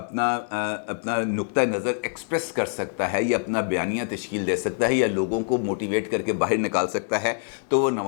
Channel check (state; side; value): silent; right; 62 dB below the other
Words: نقطہ نظر ایکسپریس کر سکتا ہے یا اپنا بیانیہ تشکیل دے سکتا ہے یا لوگوں کو موٹیویٹ کر کے باہر نکال سکتا ہے تو وہ